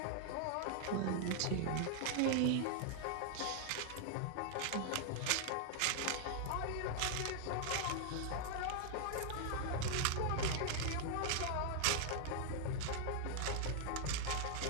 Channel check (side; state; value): both; different; correlation 0.00